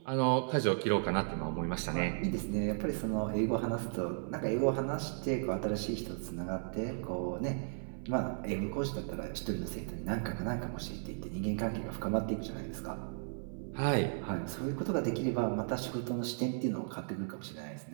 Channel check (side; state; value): left; silent; 54 dB below the other